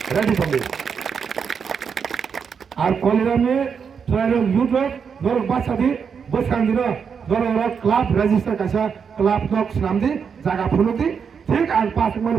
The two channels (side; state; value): left; quieter; 6.5 dB